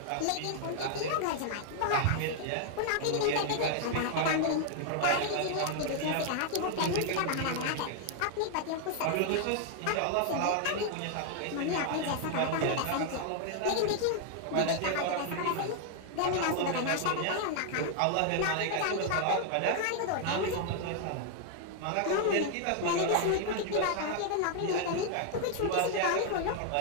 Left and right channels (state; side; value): different; both; correlation 0.00